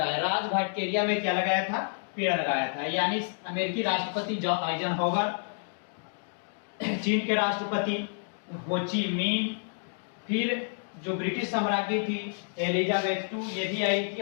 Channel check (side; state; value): right; silent; digital silence